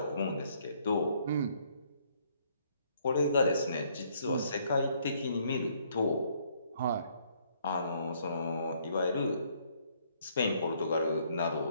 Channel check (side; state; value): both; inverted; correlation -0.67